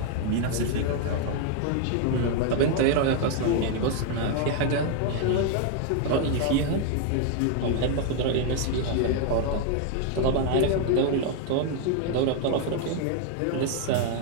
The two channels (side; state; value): both; different; correlation 0.00